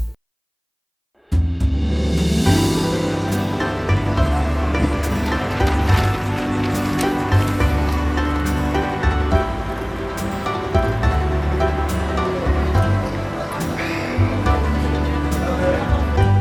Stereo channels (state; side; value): identical; both; correlation 1.00